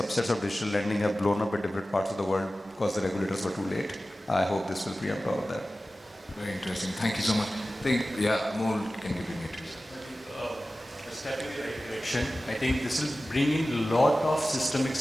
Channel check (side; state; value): both; normal; correlation 0.95